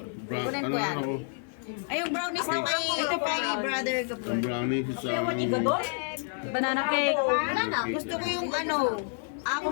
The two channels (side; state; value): right; silent; 59 dB below the other